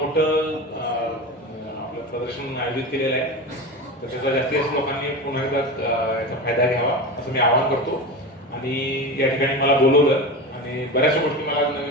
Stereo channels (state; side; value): normal; both; correlation 0.26